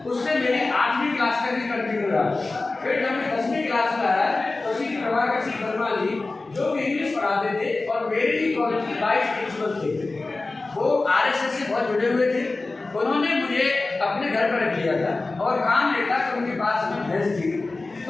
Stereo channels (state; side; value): quieter; right; 3.4 dB